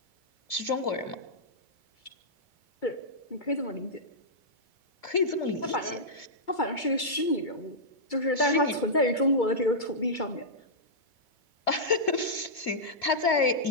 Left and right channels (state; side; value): late; right; 2.3 ms